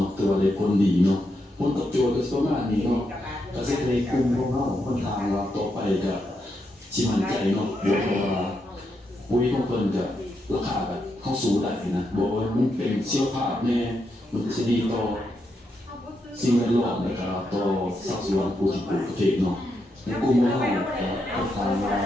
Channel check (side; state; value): both; normal; correlation 0.82